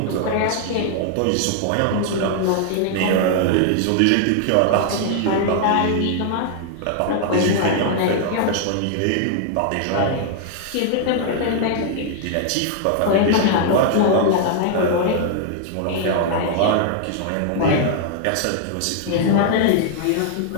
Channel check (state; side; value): different; both; correlation 0.00